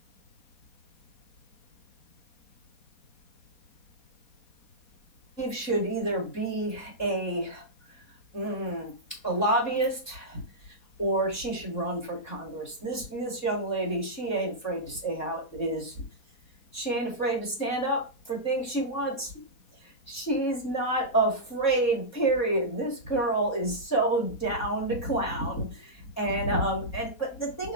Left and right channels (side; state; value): right; late; 4.2 ms